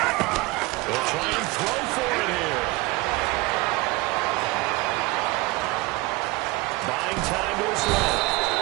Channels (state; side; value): quieter; left; 21.9 dB